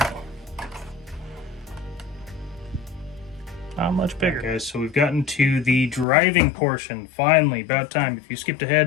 not much bigger. Okay, so we've gotten to the driving portion. Finally, about time. If you skipped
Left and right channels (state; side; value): drops out; right; at 6.1 s